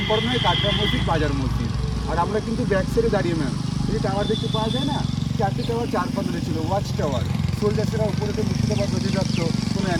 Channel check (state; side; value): identical; both; correlation 1.00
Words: হয় কাটরা মসজিদ, বাজার মসজিদ। আর আমরা কিন্তু ব্যাক সাইডে দাঁড়িয়ে ম্যাম, এই টাওয়ার দেখতে পাওয়া যায় না, 4টে টাওয়ার 4 পাতলে ছিল, ওয়াচ টাওয়ার। সোলজার্সেরা উপরে তো মুর্শিদাবাদ নদী রাখতো, কোনো